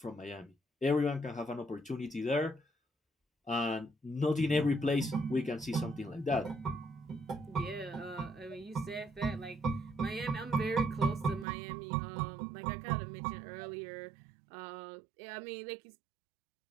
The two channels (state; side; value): drops out; left; at 11.5 s